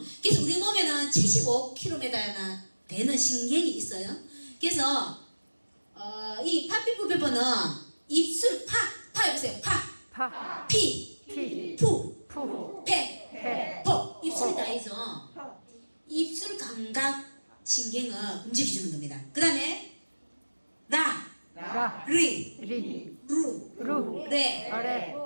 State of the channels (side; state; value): both; inverted; correlation -1.00